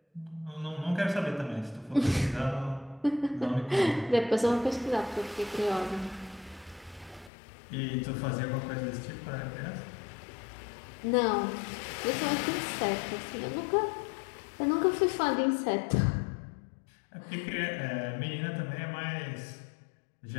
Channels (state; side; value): drops out; right; at 7.3 s